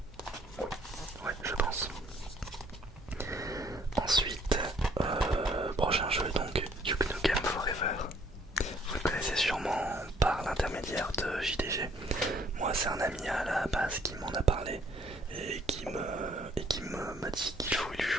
moi c'est un ami à la base qui m'en a parlé et m'a dit qu'il faut lui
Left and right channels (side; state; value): both; normal; correlation 0.62